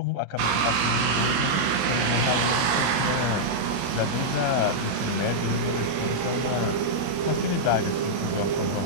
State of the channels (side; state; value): left; late; 21 ms